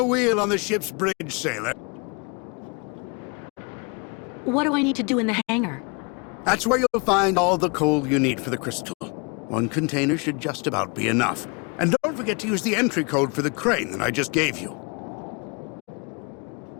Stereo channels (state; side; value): quieter; right; 32.4 dB